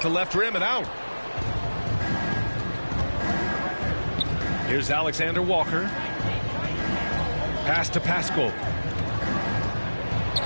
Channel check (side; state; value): both; inverted; correlation -1.00